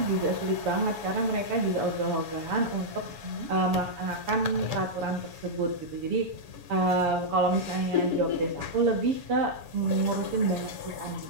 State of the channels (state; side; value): late; left; 7.0 ms